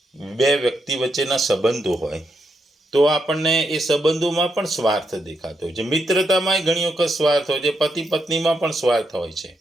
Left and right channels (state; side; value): normal; both; correlation 0.82